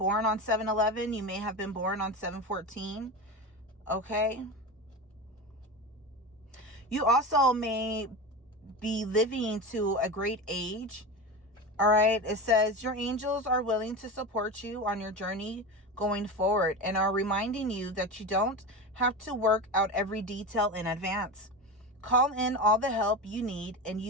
on 7/11. You may have been born on 7/14. Okay. You also may be living to a great age. All right. It says your angels are willing to support you on your journey going forward and are reminding you that you don't have to work out every detail in advance. Call in all the help you need and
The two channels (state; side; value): normal; both; correlation 0.24